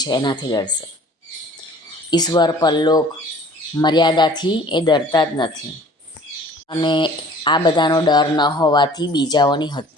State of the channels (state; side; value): normal; both; correlation 0.50